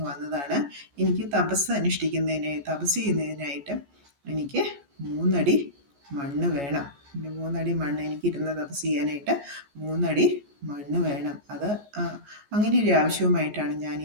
വന്നതാണ്. എനിക്ക് തപസ് ചെയ്യുന്നതിനായിട്ട് എനിക്ക് 3 അടി മണ്ണ് വേണം. 3 അടി മണ്ണ്, എനിക്കിരുന്ന് തപസ് ചെയ്യാനായിട്ട് 3 അടി മണ്ണ് വേണം. അത് അങ്ങനെ ഒരു ആവശ്യവുമായിട്ടാണ് ഞാൻ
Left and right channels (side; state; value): left; late; 14 ms